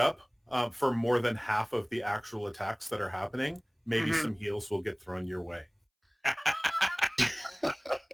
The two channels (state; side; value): identical; both; correlation 1.00